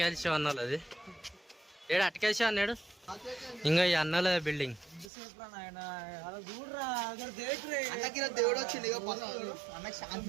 అన్నాడు, అది ఏడు అటకాల్సి అన్నాడు. ఇంకా ఈ అన్నల బిల్డింగ్ దేవుడు వచ్చింది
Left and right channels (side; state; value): left; drops out; at 5.1 s